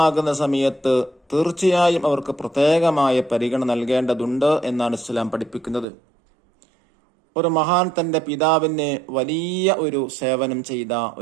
സമയത്ത് തീർച്ചയായും അവർക്ക് പ്രത്യേകമായ പരിഗണന നൽകേണ്ടതുണ്ട് എന്നാണ് ഇസ്ലാം പഠിപ്പിക്കുന്നത്. ഒരു മഹാൻ തൻ്റെ പിതാവിന് വലിയ ഒരു സേവനം ചെയ്ത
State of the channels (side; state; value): left; drops out; at 5.9 s